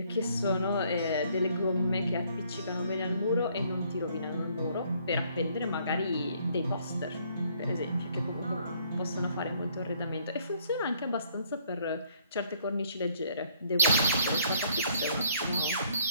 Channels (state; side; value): inverted; both; correlation -0.65